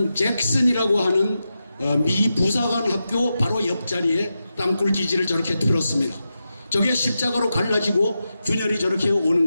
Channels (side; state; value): both; inverted; correlation -0.90